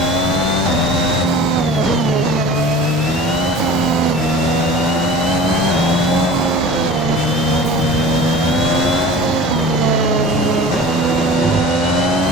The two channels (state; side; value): normal; both; correlation 0.40